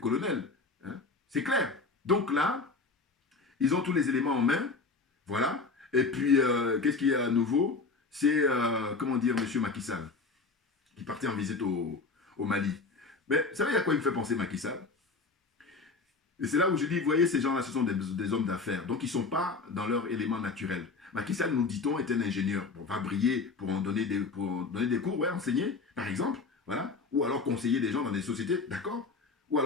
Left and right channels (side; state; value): right; quieter; 4.1 dB